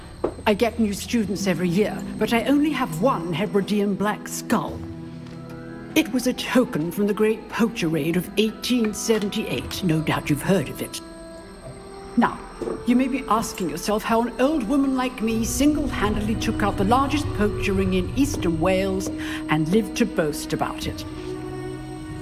I get new students every year, but I only have one Hebridean black skull. It was a token from the Great Poacher Raid of 1878. No doubt you've heard of it. Now, you may be asking yourself how an old woman like me single-handedly took out the largest poacher ring in eastern Wales and lived to boast about it.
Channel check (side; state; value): both; identical; correlation 1.00